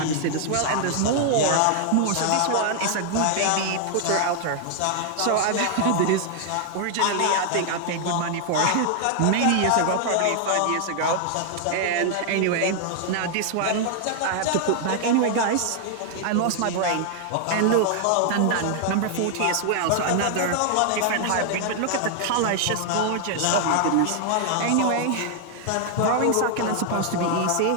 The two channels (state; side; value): different; both; correlation 0.00